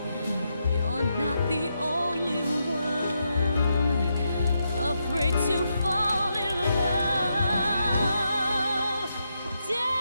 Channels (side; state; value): both; inverted; correlation -0.83